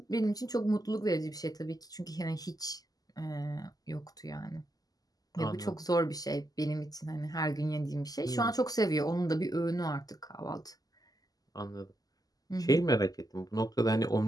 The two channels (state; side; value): late; right; 0.18 ms